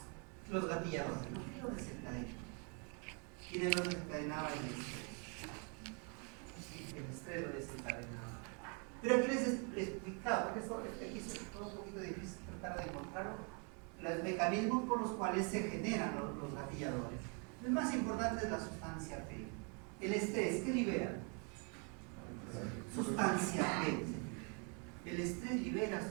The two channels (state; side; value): quieter; left; 36.6 dB